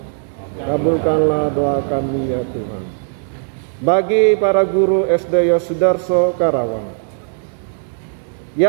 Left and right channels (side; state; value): left; silent; digital silence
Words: Kabulkanlah doa kami ya Tuhan. Bagi para guru SD Yosudarso Karawang,